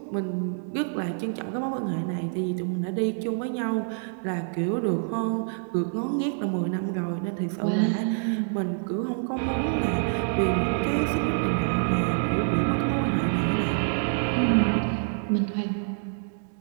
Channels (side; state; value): left; silent; digital silence